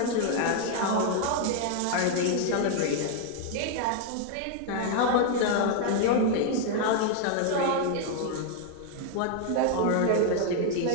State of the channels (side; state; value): both; different; correlation 0.00